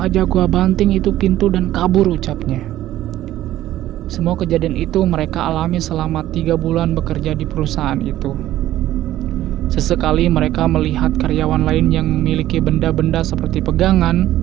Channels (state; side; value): quieter; left; 13.9 dB